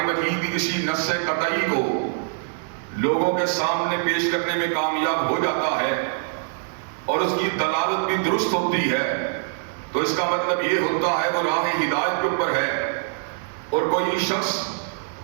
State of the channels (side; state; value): left; silent; digital silence